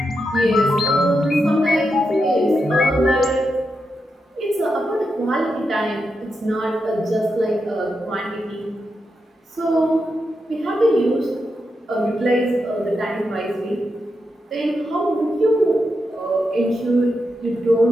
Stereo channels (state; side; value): normal; both; correlation 0.86